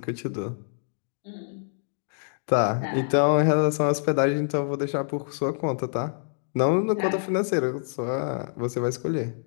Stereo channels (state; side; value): silent; right; digital silence